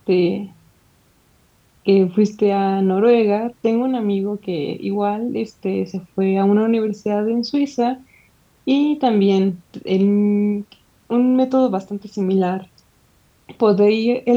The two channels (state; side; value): identical; both; correlation 1.00